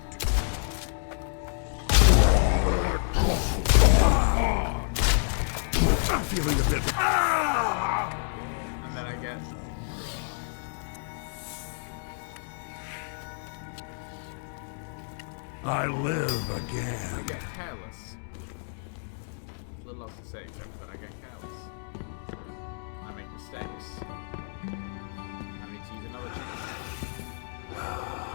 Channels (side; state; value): right; silent; digital silence